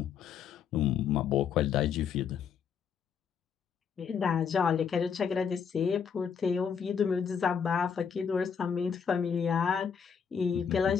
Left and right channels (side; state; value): right; quieter; 7.0 dB